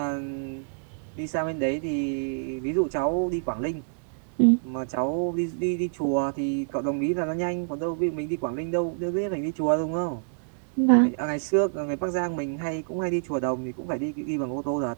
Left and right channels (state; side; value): silent; left; digital silence